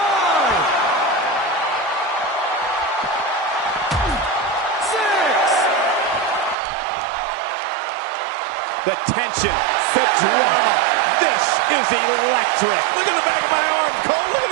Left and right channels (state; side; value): drops out; left; at 6.6 s